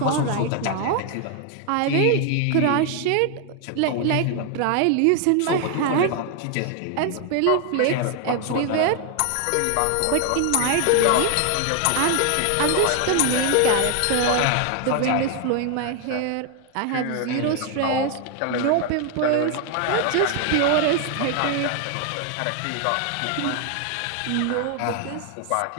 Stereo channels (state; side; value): different; both; correlation 0.00